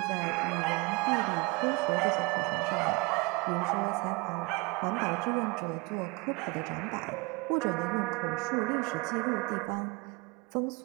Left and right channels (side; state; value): left; quieter; 27.2 dB